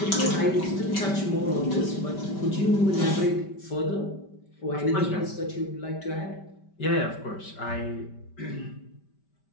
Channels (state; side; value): late; right; 5.2 ms